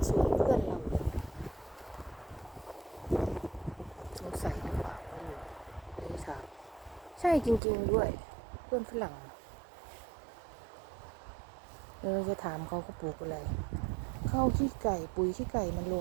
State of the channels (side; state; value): left; drops out; at 7.6 s